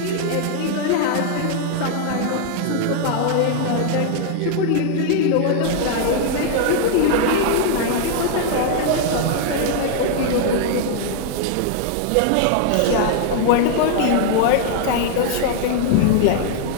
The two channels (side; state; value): both; different; correlation 0.00